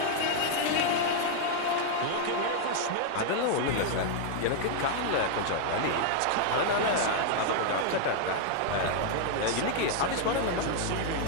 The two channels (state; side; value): different; both; correlation 0.00